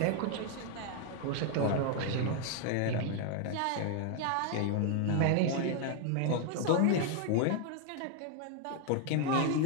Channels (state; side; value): different; both; correlation 0.00